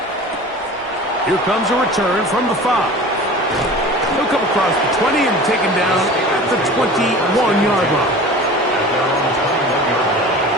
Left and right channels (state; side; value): normal; both; correlation 0.39